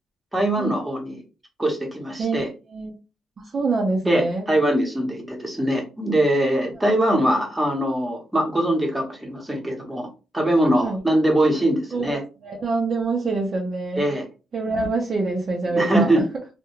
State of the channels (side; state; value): both; normal; correlation 0.84